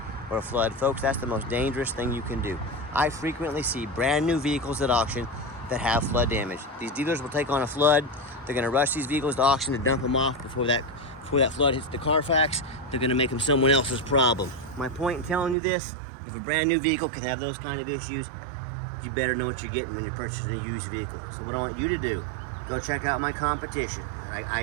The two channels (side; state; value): left; drops out; at 15.6 s